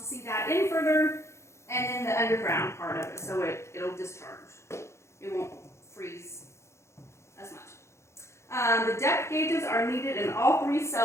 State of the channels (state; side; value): late; right; 0.13 ms